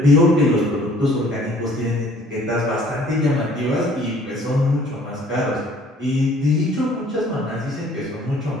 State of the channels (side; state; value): both; normal; correlation 0.56